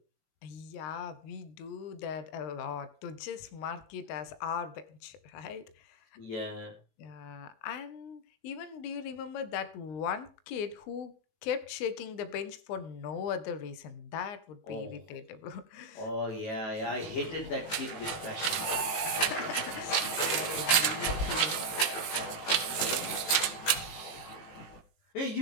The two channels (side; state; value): right; late; 18 ms